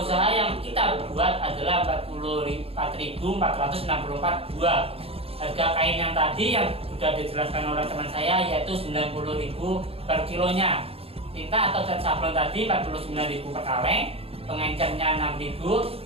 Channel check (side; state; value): left; late; 0.28 ms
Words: usaha yang kita buat adalah 44.464 buah. Harga kain yang tadi yang sudah dijelaskan oleh teman saya yaitu Rp90.000 per kilonya. Tinta atau cat sablon tadi Rp49.000 per kaleng. Pengencernya Rp6.000,